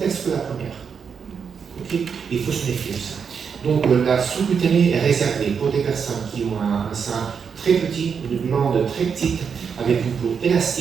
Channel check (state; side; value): quieter; left; 6.5 dB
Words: que la première. Okay? Il faut se méfier de ça. Donc la sous-cutanée est réservée pour des personnes qui ont un sein très petit, une glande très petite, avec une peau